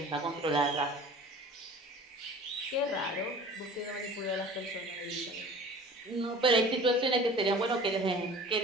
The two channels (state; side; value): normal; both; correlation 0.43